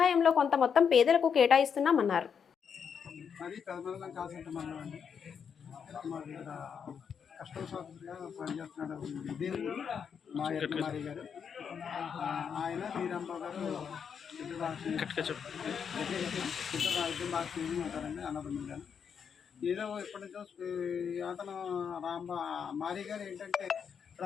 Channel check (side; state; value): right; quieter; 7.0 dB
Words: కొంత మొత్తం పేదలకు కేటాయిస్తున్నామన్నారు. ఆయన శ్రీరాంబాబు గారు ఉంటారండి అన్నదమ్ములు గారు. ఏదో ఇప్పటి నుంచో అతను మారి గారు ఏంటంటే